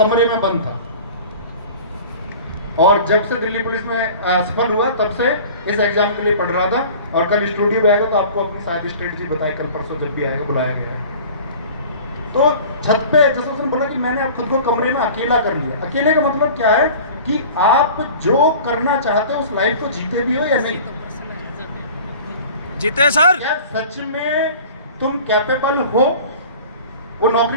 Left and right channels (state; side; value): inverted; both; correlation -0.42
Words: में बंद था। और जब से दिल्ली पुलिस में सफल हुआ तब से इस एग्जाम के लिए पढ़ रहा था। और कल स्टूडियो में आएगा तो आपको अपनी सारी स्ट्रेटजी बताए, कल परसों जब भी आएगा बुलाया गया। तो छत पे जैसे उसने बोला कि मैंने खुद को कमरे में अकेला कर लिया। अकेले का मतलब क्या है कि आप जो करना चाहते हो उस लाइफ को जीते भी हो या नहीं जीते सर। क्या सच में तुम कैपेबल हो वो